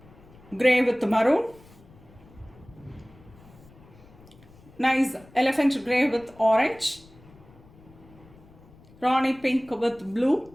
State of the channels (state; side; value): noise; left; rumble, 24 dB below the sound